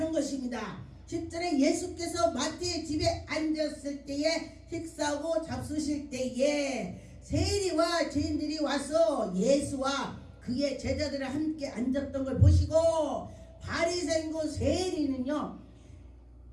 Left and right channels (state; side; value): identical; both; correlation 1.00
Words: 것입니다. 10절에 예수께서 마태의 집에 앉았을 때에 식사하고 잡수실 때에 세리와 죄인들이 와서 예수와 그의 제자들을 함께 앉았던 걸 보시고 바리새인과 세리는요